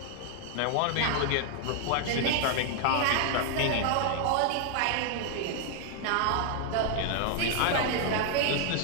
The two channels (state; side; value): different; both; correlation 0.00